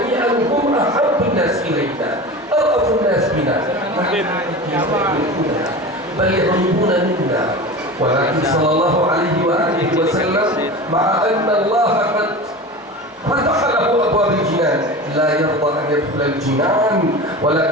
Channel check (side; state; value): both; normal; correlation 0.31